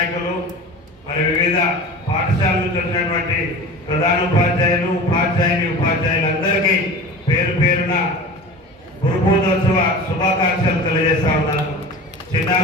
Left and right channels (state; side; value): normal; both; correlation 0.35